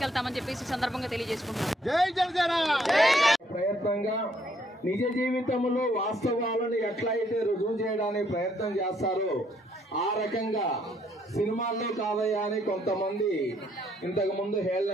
చెప్పేసి సందర్భంగా తెలియజేసుకుంటున్నాం. ప్రయత్నంగా నిజ జీవితంలో వాస్తవాలను ఎట్లయితే రుజువు చేయడానికి ప్రయత్నం చేస్తారో ఆ రకంగా సినిమాల్లో కాదయ్యా అని కొంతమంది ఇంతకు ముందు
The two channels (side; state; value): both; normal; correlation 0.69